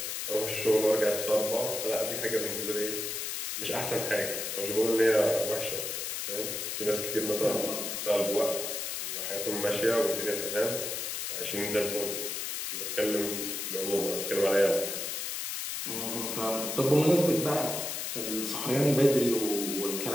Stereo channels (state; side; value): noise; left; hiss, 3 dB below the sound